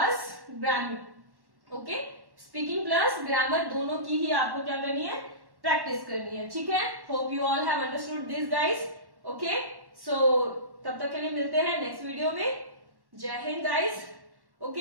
grammar. Okay, speaking plus grammar दोनों की ही आपको क्या करनी है, प्रैक्टिस करनी है. ठीक है, hope you all have understood this guys. Okay, so तब तक के लिए मिलते हैं नेक्स्ट वीडियो में. जय Hind guys.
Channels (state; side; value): late; left; 1.1 ms